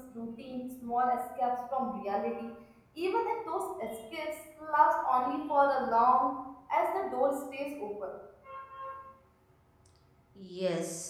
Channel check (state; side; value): identical; both; correlation 1.00